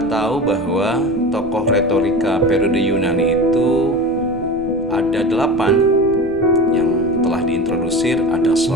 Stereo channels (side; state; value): right; noise; rumble, 19 dB below the sound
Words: tahu bahwa tokoh retorika periode Yunani itu ada 8 yang telah diintrodusir. Ada